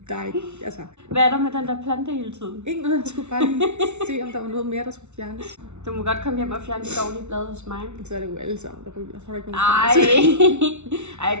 der ikke, altså... Hvad er der med den der plante hele tiden? Ikke noget, jeg skulle bare lige se, om der var noget mere, der skulle fjernes. Du må godt komme hjem og fjerne de dårlige blade hos mig. Så er det jo alle sammen, der ryger. Så er der ikke Ej, jeg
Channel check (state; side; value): late; left; 0.82 ms